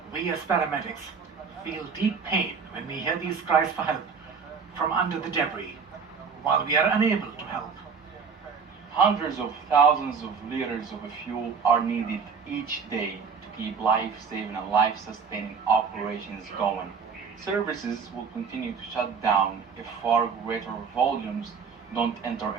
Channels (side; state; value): left; quieter; 5.8 dB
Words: We as paramedics feel deep pain when we hear these cries for help from under the debris, while we are unable to help. Hundreds of thousands of liters of fuel are needed each day to keep life-saving and life-sustaining operations going. Services will continue to shut down if far greater volumes don't enter